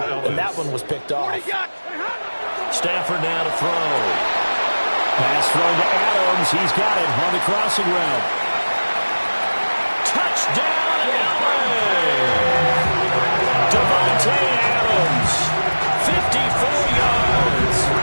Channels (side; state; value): both; inverted; correlation -1.00